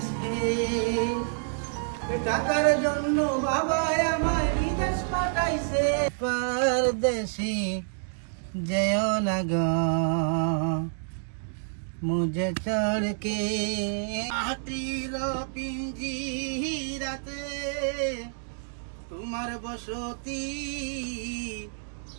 টাকার জন্য বাবা আমায় বিদেশ পাঠাইছে। परदेसी जयो ना गो मुझे छोड़ के माटीर पिंजीराते तुम्हार बसती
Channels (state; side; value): silent; left; digital silence